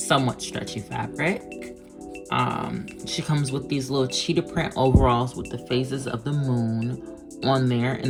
stretchy fabric. She comes with these little cheetah print overalls with the phases of the moon on there,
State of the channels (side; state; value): both; identical; correlation 1.00